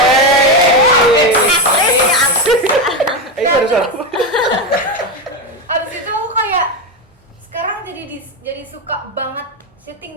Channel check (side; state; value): both; normal; correlation 0.12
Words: Itu harus apa? Abis itu aku kayak sekarang jadi suka banget syuting